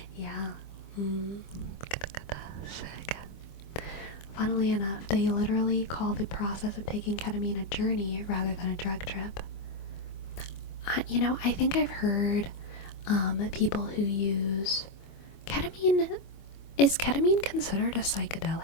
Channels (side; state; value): right; late; 25 ms